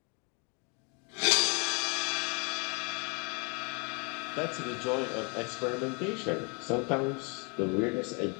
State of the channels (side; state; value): right; quieter; 33.8 dB